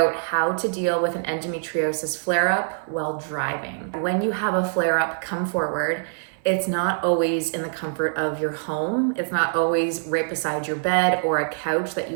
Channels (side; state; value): left; silent; 56 dB below the other